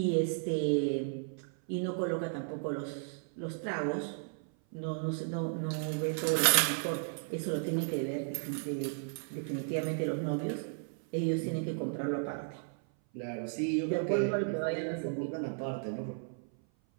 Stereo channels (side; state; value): left; silent; 55 dB below the other